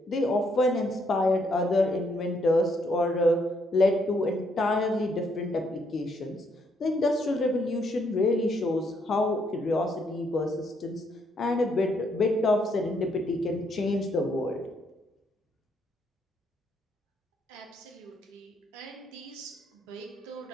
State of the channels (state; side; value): normal; both; correlation 0.73